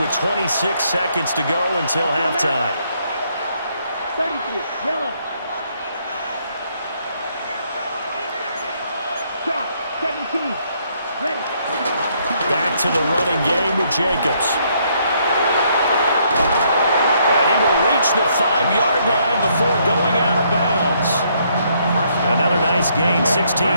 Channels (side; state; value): both; inverted; correlation -0.70